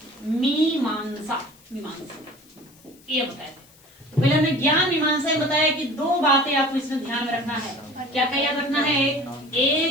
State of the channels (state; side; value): noise; left; hiss, 27 dB below the sound